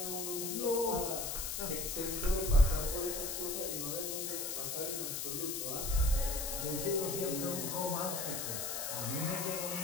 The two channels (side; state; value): left; noise; hiss, 3 dB below the sound